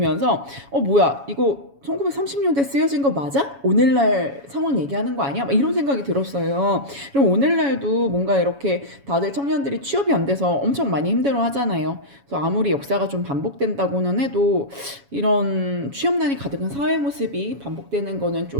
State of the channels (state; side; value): late; left; 7.2 ms